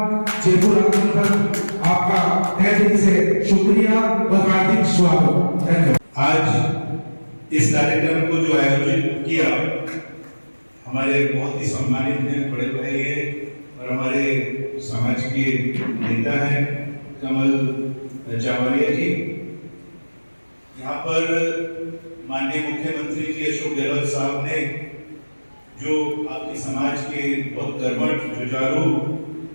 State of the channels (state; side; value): inverted; both; correlation -1.00